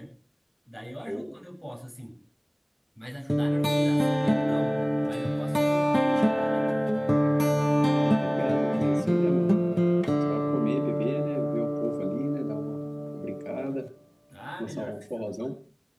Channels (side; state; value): both; identical; correlation 1.00